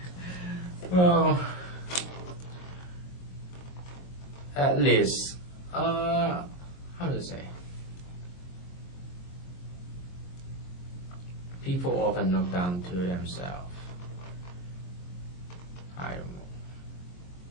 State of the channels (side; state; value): right; late; 22 ms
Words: Well, at least, how to say? People often look down to themselves. I don't know.